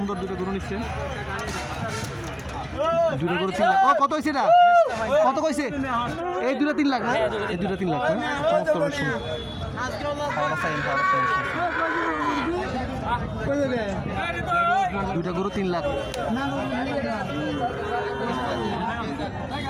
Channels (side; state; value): both; identical; correlation 1.00